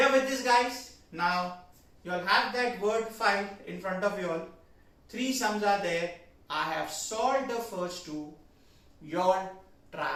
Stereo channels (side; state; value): both; identical; correlation 1.00